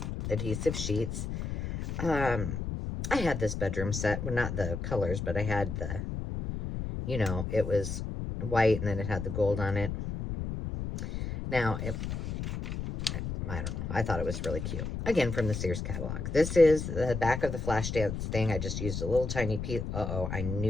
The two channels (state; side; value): noise; left; rumble, 4 dB below the sound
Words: adhesive sheets. I had this bedroom set, well, not the colors, but I had the, you know, it was white, and then it had the gold on it. Now, I don't know. I thought it was really cute. Again, from the Sears catalog. This is the back of the Flashdance thing. I just used a little tiny piece. Uh-oh, I